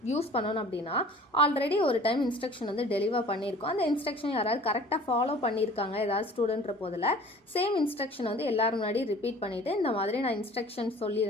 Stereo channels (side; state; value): both; normal; correlation 0.47